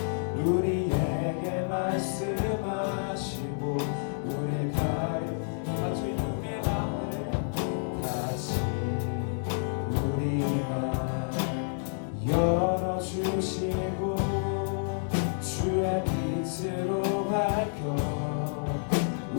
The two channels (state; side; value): silent; right; digital silence